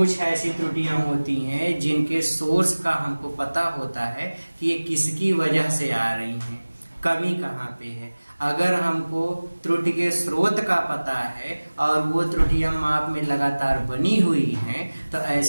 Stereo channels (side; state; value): both; inverted; correlation -1.00